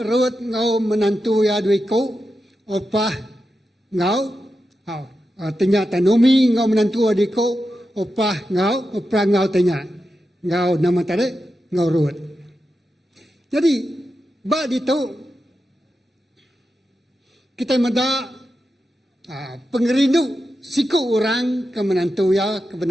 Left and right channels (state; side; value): normal; both; correlation 0.89